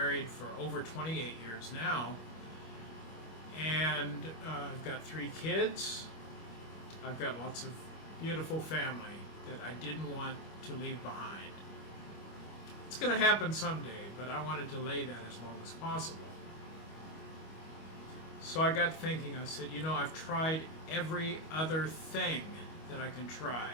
for over 28 years now. And I've got 3 kids. I've got lots of beautiful family that I didn't want to leave behind. It's going to happen someday, but I want to delay that as long as possible. So I got thinking, I said, I've tried every other thing that I can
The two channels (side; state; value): right; late; 25 ms